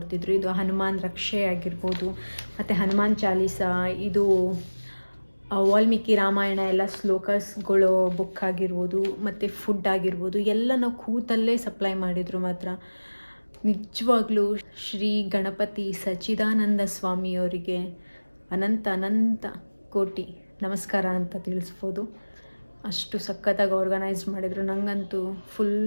ಇದು ಹನುಮಾನ್ ರಕ್ಷೆ ಆಗಿರ್ಬೋದು, ಮತ್ತು ಹನುಮಾನ್ ಚಾಲೀಸ, ಇದು ವಾಲ್ಮೀಕಿ ರಾಮಾಯಣ ಎಲ್ಲ ಶ್ಲೋಕಸ್ಗಳು ಬುಕ್ ಆಗಿರ್ಬೋದು, ಮತ್ತು ಫುಡ್ ಆಗಿರ್ಬೋದು, ಎಲ್ಲ ನಾವು ಕೂತಲ್ಲೇ ಸಪ್ಲೈ ಮಾಡಿದರು. ಮಾತ್ರ ನಿಜವಾಗ್ಲೂ ಶ್ರೀ ಗಣಪತಿ ಸಚ್ಚಿದಾನಂದ ಸ್ವಾಮಿಯವರಿಗೆ ಅನಂತ ಅನಂತ ಕೋಟಿ ನಮಸ್ಕಾರ ಅಂತ ತಿಳಿಸ್ಬೋದು. ಅಷ್ಟು ಸಖತ್ತಾಗಿ ಆರ್ಗನೈಸ್ ಮಾಡಿದರು. ನನಗಂತೂ ಫುಲ್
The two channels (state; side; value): inverted; both; correlation -1.00